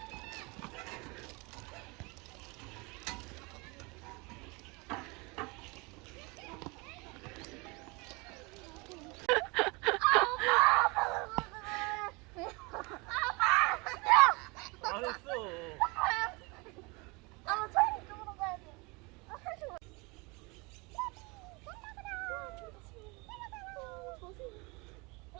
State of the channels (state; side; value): quieter; left; 27.3 dB